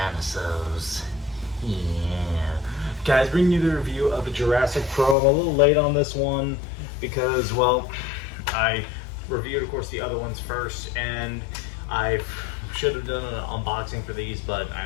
Yeah. Guys, bringing you the review of the Jurassic Pro. I'm a little late on this one because, well, I reviewed, of course, the other ones first, and I should have done an unboxing for these, but I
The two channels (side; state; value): right; drops out; at 5.2 s